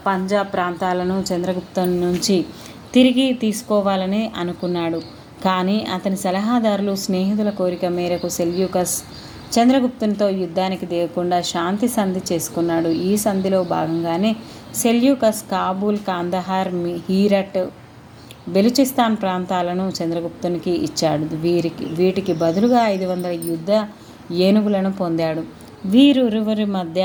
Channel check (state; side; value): identical; both; correlation 1.00